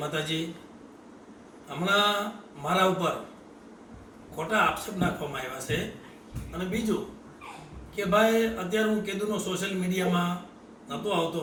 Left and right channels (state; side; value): identical; both; correlation 1.00